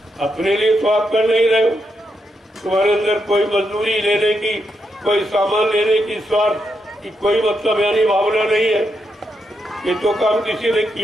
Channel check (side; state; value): both; normal; correlation 0.82